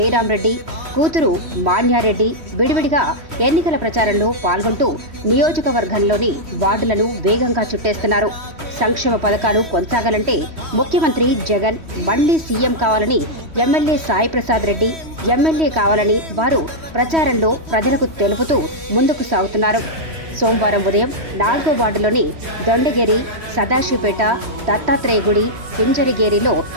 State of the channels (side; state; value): left; late; 3.1 ms